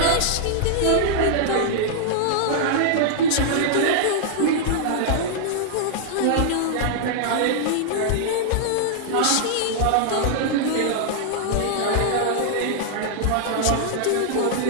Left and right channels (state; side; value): different; both; correlation -0.01